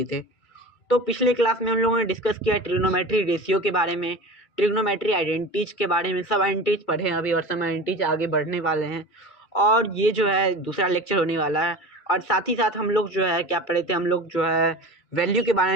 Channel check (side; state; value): right; late; 2.3 ms